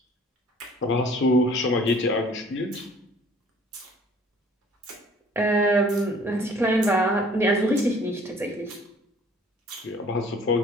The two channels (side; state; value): both; normal; correlation 0.53